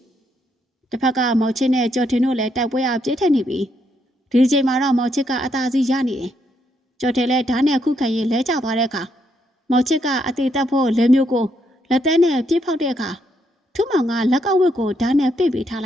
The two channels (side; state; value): both; normal; correlation 0.76